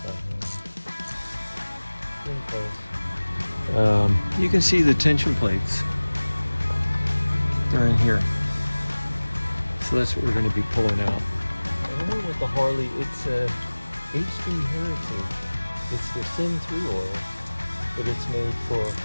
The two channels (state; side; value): inverted; both; correlation -1.00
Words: by hand. Getting close. You can see the tension plates. They're in here. So that's what we're going to be pulling out. And then with the Harley, it's a HD Heritage. It's the Sin 3 oil, but it's made for